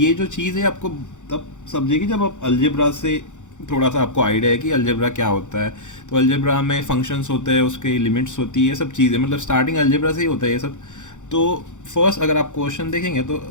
जो चीज़ है आपको तब समझेगी जब आप अलजेब्रा से थोड़ा सा आपको आइडिया है कि अलजेब्रा क्या होता है। तो अलजेब्रा में फंक्शंस होते हैं, उसके लिमिट्स होती है, सब चीज़ें, मतलब स्टार्टिंग अलजेब्रा से ही होता है ये सब। तो फर्स्ट अगर आप क्वेश्चन देखेंगे तो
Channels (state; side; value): late; right; 0.85 ms